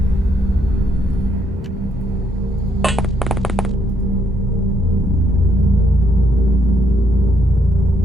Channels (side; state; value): both; normal; correlation 0.73